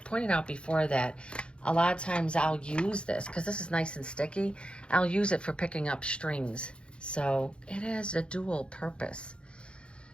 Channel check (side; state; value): right; late; 0.056 ms